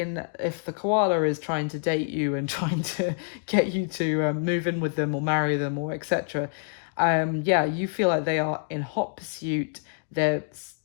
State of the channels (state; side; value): silent; right; digital silence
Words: the koala is trying to date you and trying to get you to move in with them or marry them or etc. You feel like they are in hot pursuit. They've